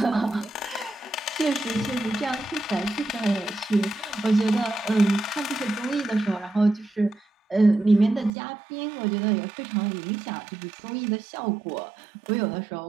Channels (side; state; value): left; drops out; at 8.3 s